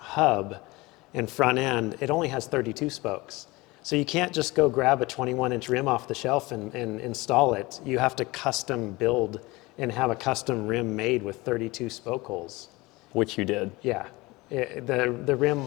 and front end. It only has 32 spokes. So you can't just go grab a 21-inch rim off the shelf and install it. You have to custom build and have a custom rim made with 32 spoke holes. Which you did. Yeah, the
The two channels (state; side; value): quieter; right; 22.2 dB